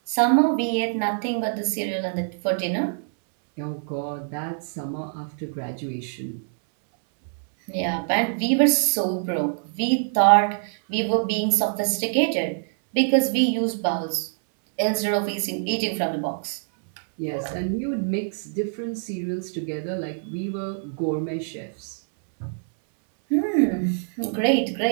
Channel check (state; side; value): silent; left; 62 dB below the other